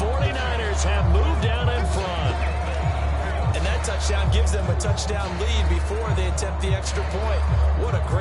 have moved down in front. And that touchdown gives them a touchdown lead before they attempt the extra point. What a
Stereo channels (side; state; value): both; identical; correlation 1.00